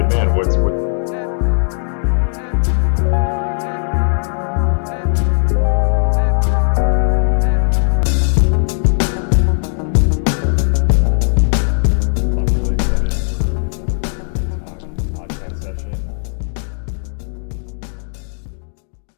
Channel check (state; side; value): silent; right; digital silence